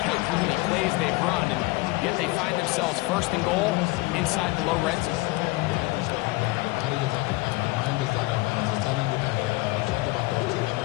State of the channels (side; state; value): right; quieter; 22.1 dB